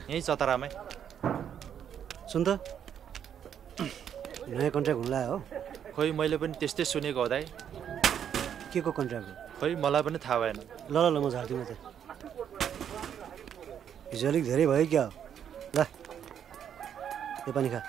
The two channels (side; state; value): left; quieter; 8.9 dB